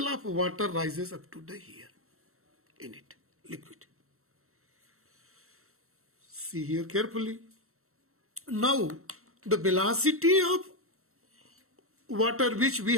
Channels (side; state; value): left; late; 0.63 ms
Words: of water rises up to the here in it, liquid. See here carefully. Now the velocity of water which we